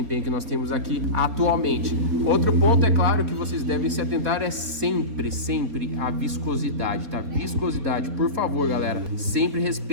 que nós temos aqui atualmente. Outro ponto, é claro, que vocês devem se atentar é sempre a viscosidade, tá? Viscosidade, por favor, galera, sempre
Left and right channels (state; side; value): late; left; 4.0 ms